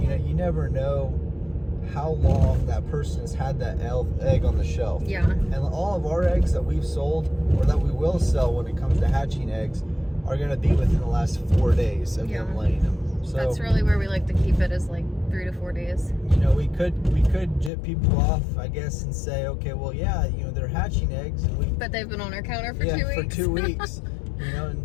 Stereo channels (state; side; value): drops out; right; at 17.7 s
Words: never know how long that person has had that egg on the shelf. Yeah. And all of our eggs that we've sold or that we will sell when it comes to hatching eggs are going to be within the last 4 days of them laying them. So that's really where we like to keep it, is like 3 to 4 days. We could jip people off, I guess, and say, okay, well, yeah, they're hatching eggs, and but they've been on our counter for 2 weeks. for 2 weeks.